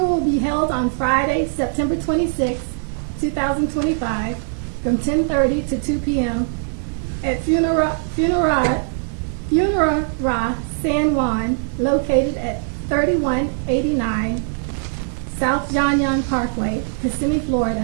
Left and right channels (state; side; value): silent; left; 61 dB below the other